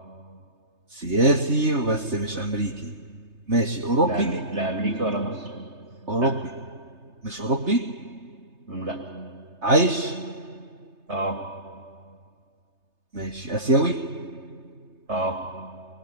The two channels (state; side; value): late; left; 3.3 ms